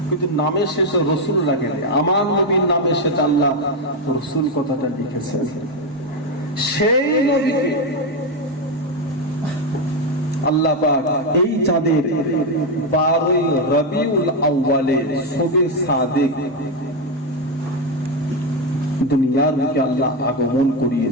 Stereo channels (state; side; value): normal; both; correlation 0.07